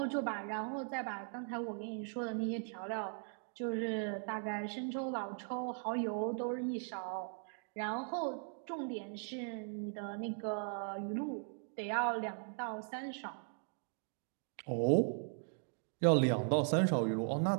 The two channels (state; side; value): silent; left; 52 dB below the other